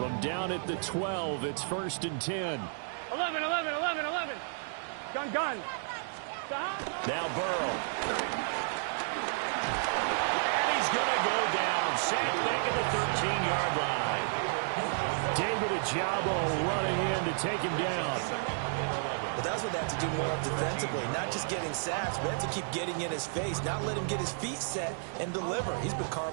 down at the 12, it's 1st and 10. 11, 11, 11, 11. Gun, gun. Now Burrow. And he's going to go down. Sacked back at the 13-yard line. David Ojabo running in to take him down. But that's what they have to do more of defensively, not just getting sacks, but have to keep getting in his face, not let him get his feet set and deliver. He's been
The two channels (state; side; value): silent; left; digital silence